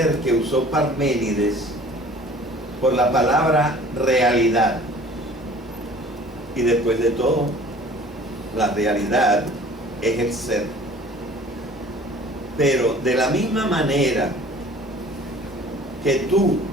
que usó Parménides por la palabra realidad. Y después de todo, la realidad es el ser. Pero de la misma manera que tú,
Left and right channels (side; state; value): both; normal; correlation 0.48